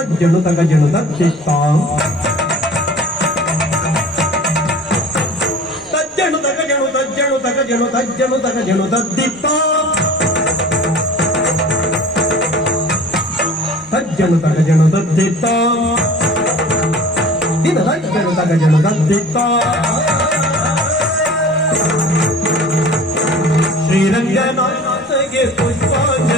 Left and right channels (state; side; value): normal; both; correlation 0.43